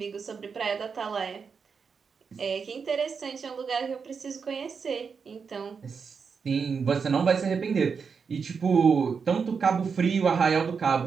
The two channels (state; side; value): quieter; left; 5.8 dB